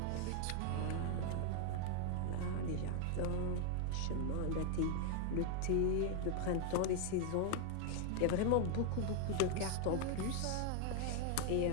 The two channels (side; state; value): both; different; correlation 0.00